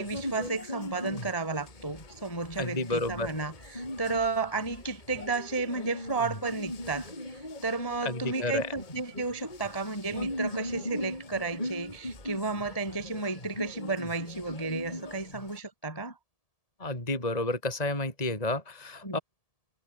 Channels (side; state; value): right; late; 1.7 ms